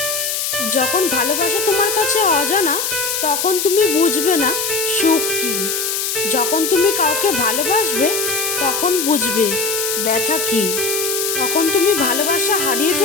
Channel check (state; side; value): noise; left; hiss, 1 dB below the sound